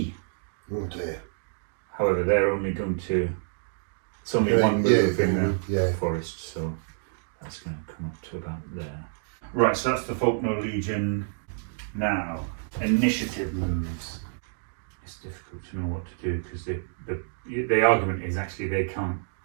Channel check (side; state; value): left; silent; digital silence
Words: Oh dear. However, they're only going to... It's only 1 move in the forest, so that's going to come up to about there. Right, so that's the Faulkner Legion. Now, initiative moves. It's difficult to know what to do because the argument is actually they can't